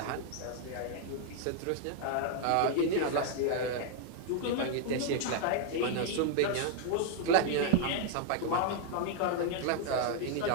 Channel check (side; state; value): both; different; correlation 0.00